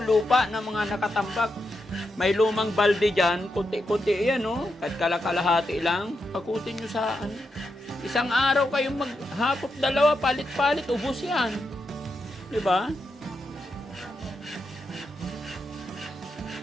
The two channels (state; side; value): normal; both; correlation 0.85